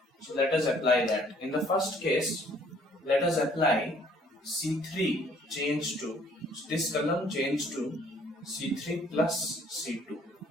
So let us apply that. In the first case, let us apply C3 change to, this column change to C3 plus C2.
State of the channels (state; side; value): normal; both; correlation 0.60